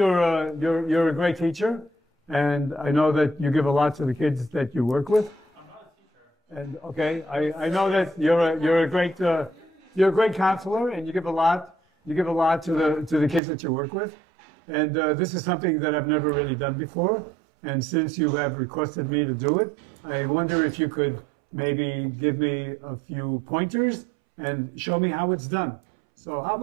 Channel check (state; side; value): drops out; left; at 13.4 s